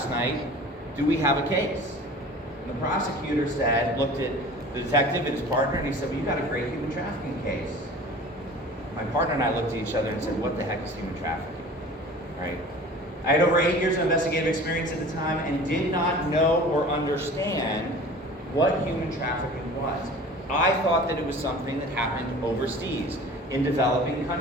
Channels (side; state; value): both; normal; correlation 0.42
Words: night. Do we have a case? And the prosecutor looked at the detective and his partner, and he said, well, you got a great human trafficking case. My partner and I looked at each other and said, what the heck is human trafficking? Right? I had over 8 years of investigative experience at the time and did not know or understand what human trafficking was. I thought that it was something that happened overseas, in developing